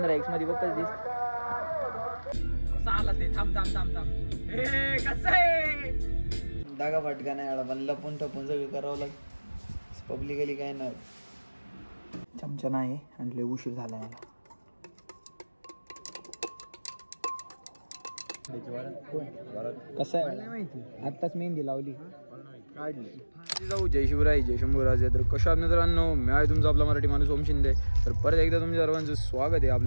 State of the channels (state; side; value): inverted; both; correlation -1.00